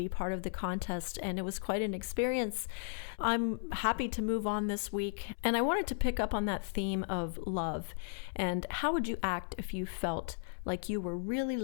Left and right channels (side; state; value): right; silent; 54 dB below the other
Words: part of the contest, and it was quite an experience. I'm happy to move on this week, and I wanted to pick up on that theme of love. And how would you act if you felt like you were really